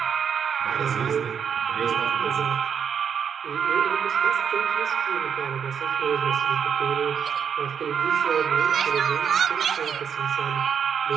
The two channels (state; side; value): quieter; left; 7.5 dB